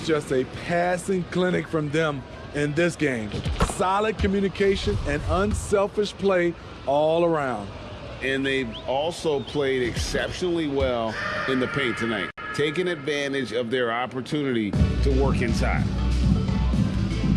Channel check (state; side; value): identical; both; correlation 1.00